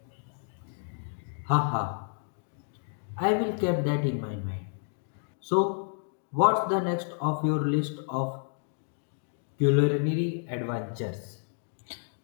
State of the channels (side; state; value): right; silent; digital silence